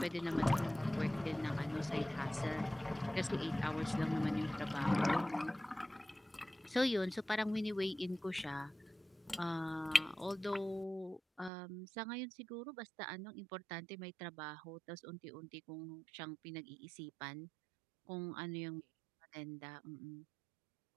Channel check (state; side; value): drops out; left; at 11.5 s